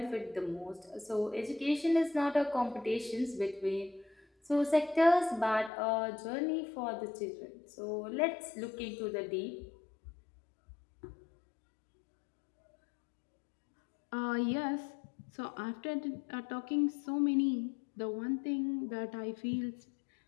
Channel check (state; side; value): drops out; right; at 5.7 s